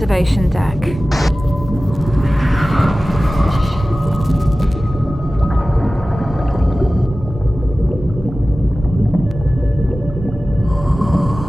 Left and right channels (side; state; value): both; normal; correlation 0.96